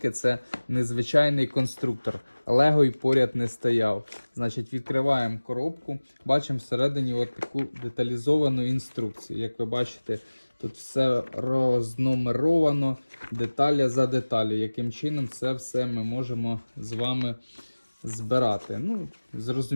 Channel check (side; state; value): both; inverted; correlation -1.00